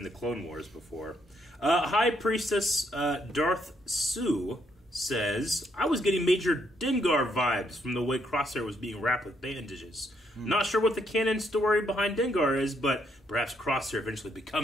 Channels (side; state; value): both; normal; correlation 0.74